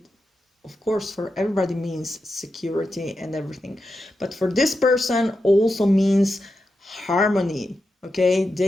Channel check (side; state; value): both; normal; correlation 0.88